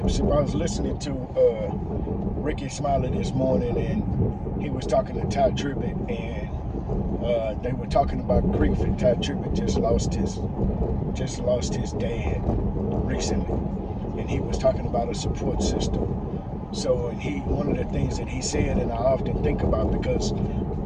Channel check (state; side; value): identical; both; correlation 1.00